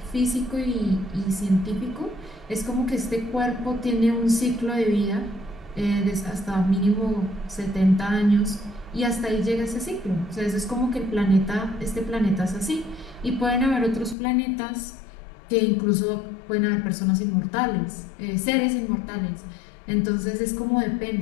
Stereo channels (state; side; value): drops out; right; at 14.2 s